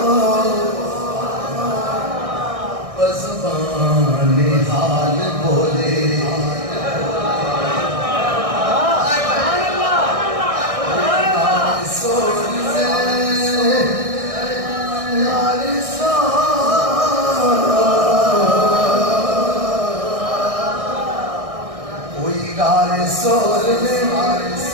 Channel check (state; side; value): late; left; 1.6 ms